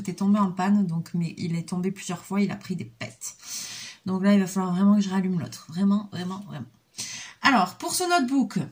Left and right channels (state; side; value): identical; both; correlation 1.00